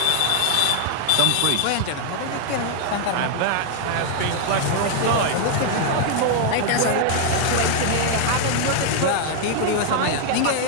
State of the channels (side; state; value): both; different; correlation 0.00